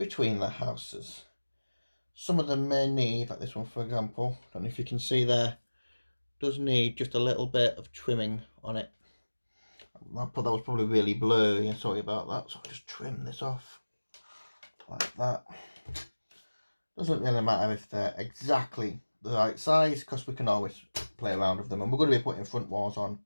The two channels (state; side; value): inverted; both; correlation -1.00